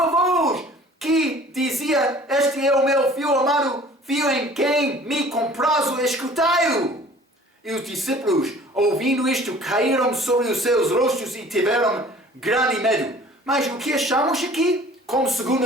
voz que dizia, este é o meu filho amado, filho em quem me comprazo, escutai-o. E os discípulos, ouvindo isto, caíram sobre os seus rostos e tiveram grande medo. Mas o que achamos aqui, como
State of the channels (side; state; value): both; normal; correlation 0.49